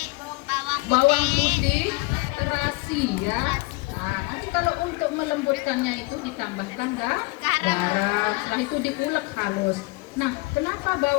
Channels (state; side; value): quieter; right; 24.9 dB